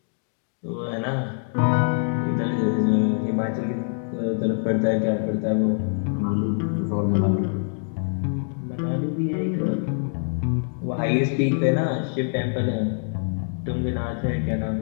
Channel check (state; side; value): silent; right; 60 dB below the other